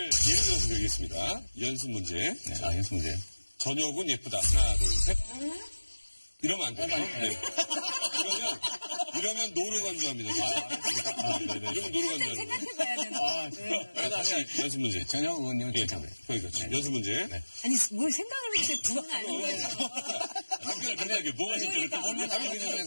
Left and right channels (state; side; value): inverted; both; correlation -1.00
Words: 예를 들어서 드리겠습니다. 연습 문제. 네, 연습 문제요. 저녁은 예쁘다. 하나, 둘, 셋. 이러면 안 돼요. 네. 이러면 노로 간주합니다. 네네. 이러면 노로 간주하는 거예요. 생각해봐야 되나? 자, 다시 연습 문제. 전혁 의원님은 예. 진짜 그래요. 그러니까 연습 문제. 네. 아니 뭘 생각을 이렇게 두분 아는 거죠? 답변을 간단하게 뭐가 진짜 이렇게 오늘 답변